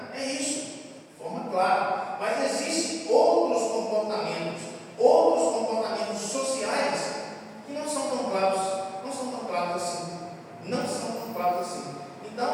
É isso, de forma clara. Mas existem outros comportamentos sociais que não são tão claros assim. Não são tão claros assim.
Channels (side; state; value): both; identical; correlation 1.00